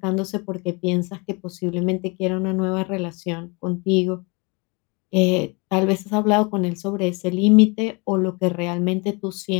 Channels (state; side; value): quieter; right; 29.5 dB